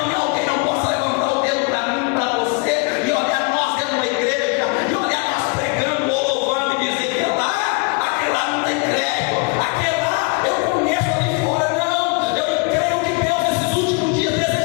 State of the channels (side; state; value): right; quieter; 31.5 dB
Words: alguém não possa levantar o dedo para mim, para você, e olhar nós dentro da igreja, e olhar nós pregando ou louvando e dizer que aquele lá não tem crédito, aquele lá eu conheço ali fora. Não, eu creio que Deus nesses últimos dias